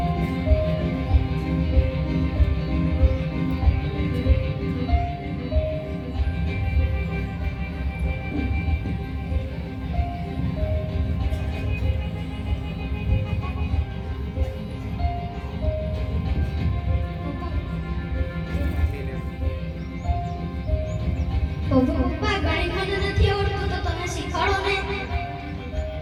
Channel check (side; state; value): both; identical; correlation 1.00